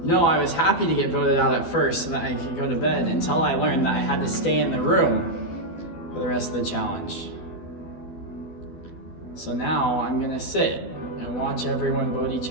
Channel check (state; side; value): late; right; 12 ms